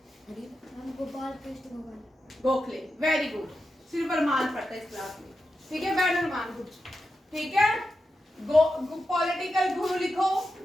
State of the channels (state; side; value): normal; both; correlation 0.89